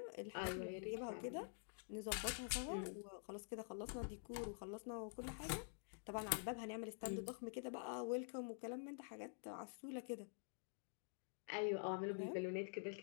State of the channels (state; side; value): silent; right; digital silence